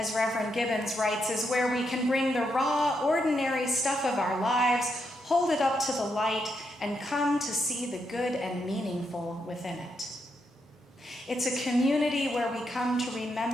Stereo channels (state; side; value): normal; both; correlation 0.81